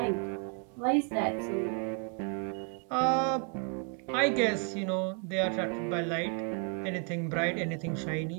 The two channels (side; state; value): left; quieter; 39.8 dB